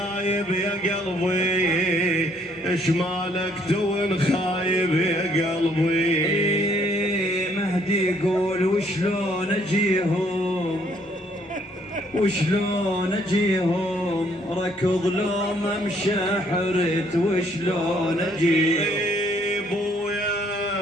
يا قلبي ايش مالك تون خايب يا قلبي. مهدي يقول وشلون اجيهم ركض لو ما مشى حرت وشلون اجيهم.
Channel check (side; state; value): both; normal; correlation 0.66